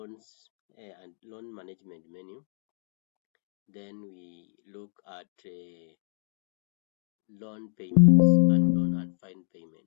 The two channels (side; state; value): right; silent; digital silence